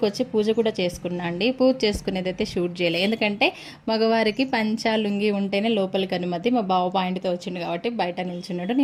వచ్చి పూజ కూడా చేసుకున్నా అండి. పూజ చేసుకునేది అయితే షూట్ చేయలేదు, ఎందుకంటే మగవారికి పంచా లుంగి ఉంటేనే లోపలికి అనుమతి. మా బావ పాయింట్తో వచ్చిండు కాబట్టి బయట నిల్చున్నాడు.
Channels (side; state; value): both; identical; correlation 1.00